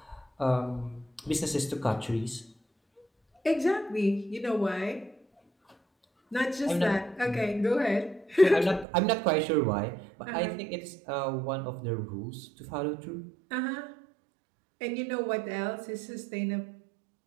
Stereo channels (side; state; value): left; drops out; at 8.8 s